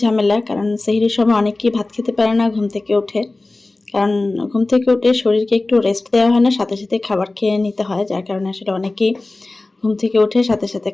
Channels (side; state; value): right; quieter; 3.1 dB